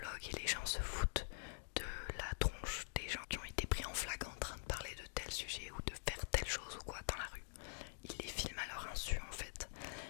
et les gens se foutent de la tronche des gens qui ont été pris en flag en train de parler de tel sujet ou de faire telle chose ou quoi dans la rue. Il les filme à leur insu en fait.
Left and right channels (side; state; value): right; silent; digital silence